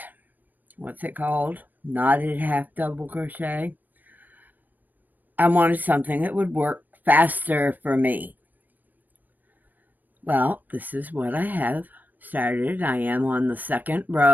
what's it called? Knotted half double crochet, I wanted something that would work faster for me. Well, this is what I have started. I am on the 2nd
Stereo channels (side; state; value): left; late; 0.088 ms